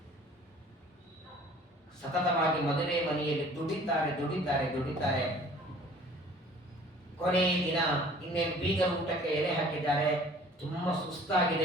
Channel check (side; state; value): both; normal; correlation 0.51